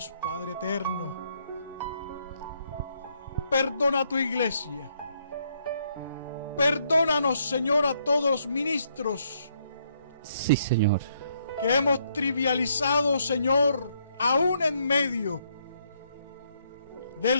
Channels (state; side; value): inverted; both; correlation -0.72